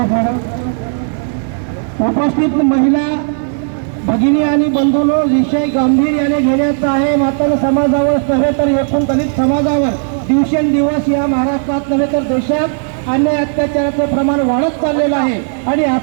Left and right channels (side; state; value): left; silent; digital silence